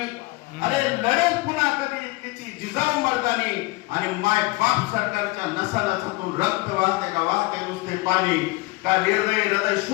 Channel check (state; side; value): quieter; right; 22.6 dB